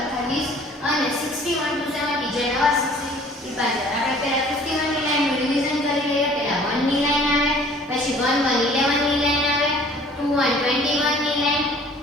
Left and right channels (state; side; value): normal; both; correlation 0.52